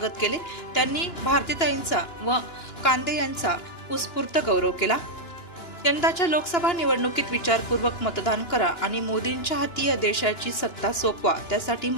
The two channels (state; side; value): late; right; 2.9 ms